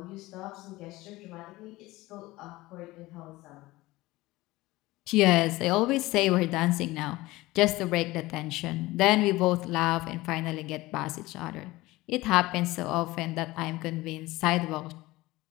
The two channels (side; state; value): right; quieter; 19.3 dB